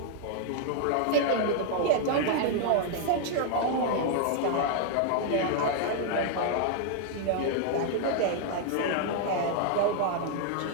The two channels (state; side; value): different; both; correlation -0.01